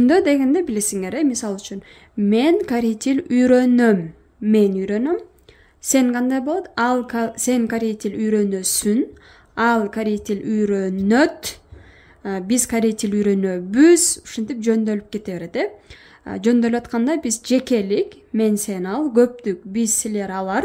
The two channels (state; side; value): identical; both; correlation 1.00